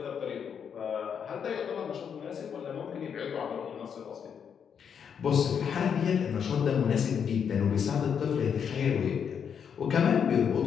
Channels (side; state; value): right; quieter; 7.4 dB